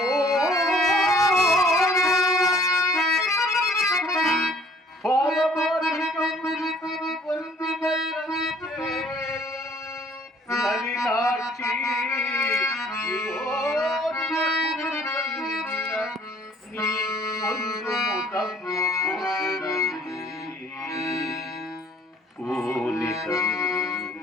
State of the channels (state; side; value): normal; both; correlation 0.56